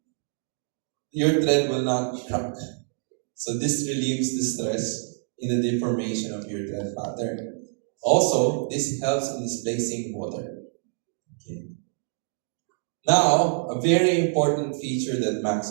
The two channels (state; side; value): silent; left; digital silence